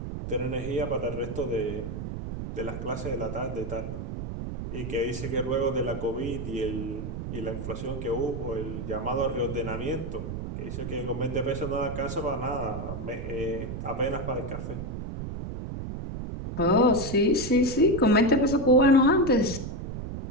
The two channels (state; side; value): noise; right; rumble, 6 dB below the sound